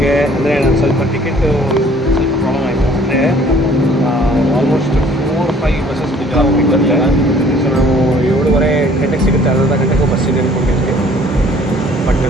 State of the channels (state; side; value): normal; both; correlation 0.56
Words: ಅಂದರೆ ನಾನು ಸ್ವಲ್ಪ ಟಿಕೆಟು ಸ್ವಲ್ಪ ಪ್ರಾಬ್ಲಮ್ ಆಯಿತು. ಅಂದರೆ ಆಲ್ಮೋಸ್ಟ್ 4-5 ಬಸ್ಸಸ್ ಬರುತ್ತೆ. ಸೊ ನಾವು 7:30 ಗಂಟೆಗೆ ಸಿಗುತ್ತೆ, ಅರ್ಧ ಗಂಟೆಗೂ ಬಸ್ ಇದೆ ಅಂದ್ಕೊಂಡಿದ್ವಿ. ಬಟ್